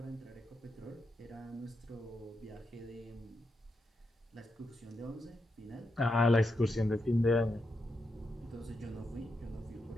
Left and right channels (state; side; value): normal; both; correlation 0.84